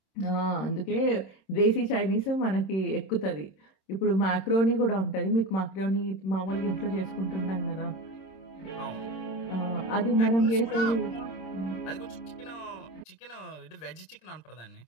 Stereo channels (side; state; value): right; late; 26 ms